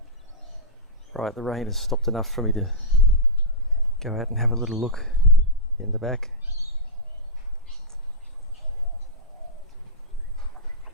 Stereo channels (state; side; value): normal; both; correlation -0.10